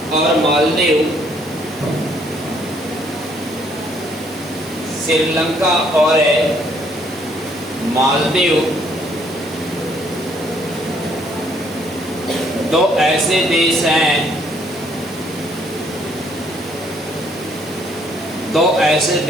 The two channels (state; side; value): normal; both; correlation 0.66